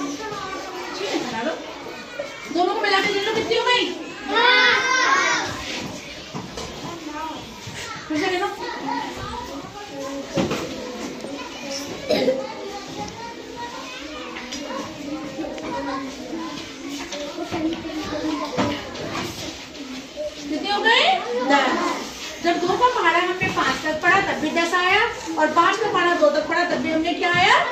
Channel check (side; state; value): both; identical; correlation 1.00